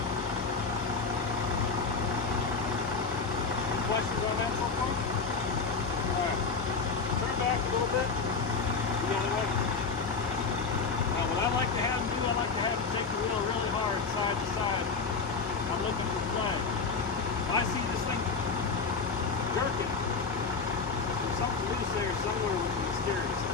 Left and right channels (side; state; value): right; quieter; 4.7 dB